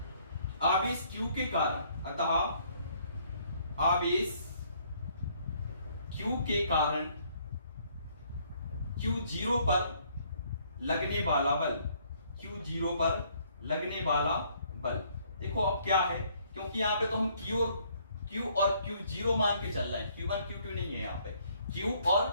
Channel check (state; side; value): inverted; both; correlation -0.65